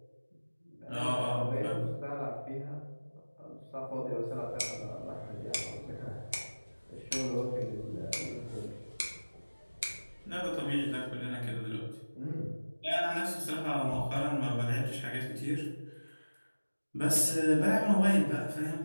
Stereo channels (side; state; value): both; inverted; correlation -1.00